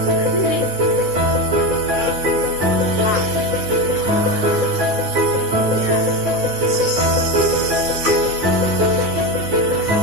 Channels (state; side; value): late; left; 9.6 ms